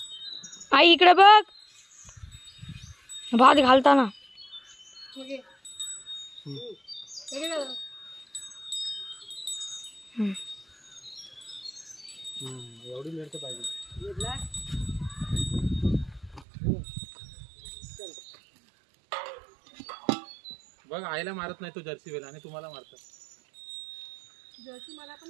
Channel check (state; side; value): drops out; left; at 16.4 s